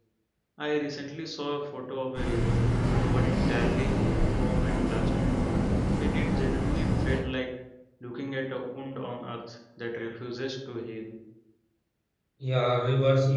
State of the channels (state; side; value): identical; both; correlation 1.00